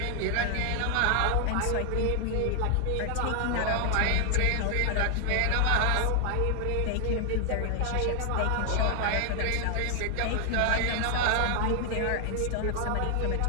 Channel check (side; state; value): both; different; correlation 0.00